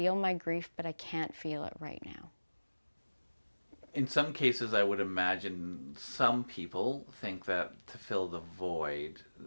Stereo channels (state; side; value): inverted; both; correlation -1.00